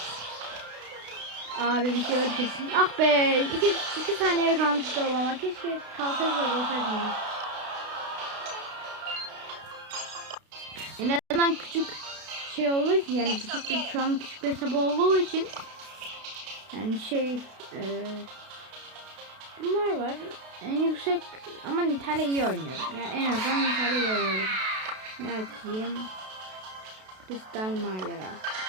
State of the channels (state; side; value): late; left; 32 ms